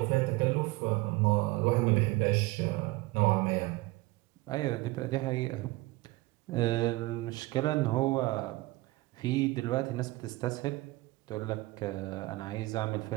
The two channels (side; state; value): left; quieter; 21.0 dB